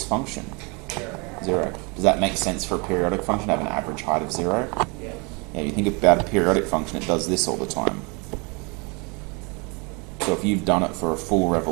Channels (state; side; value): quieter; left; 30.3 dB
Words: function? 0. Does that make sense for a periodic function to have an average height of 0? Yeah. Yeah, you think about a periodic function, it does this all the time. So if you've done it for a full